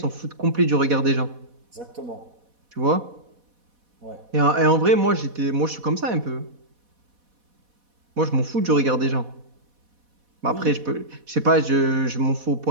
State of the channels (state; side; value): late; left; 4.1 ms